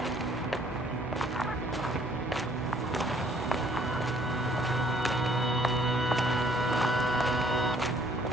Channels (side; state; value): both; normal; correlation 0.61